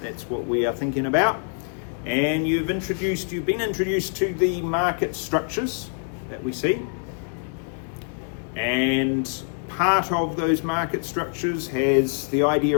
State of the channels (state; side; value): silent; right; 58 dB below the other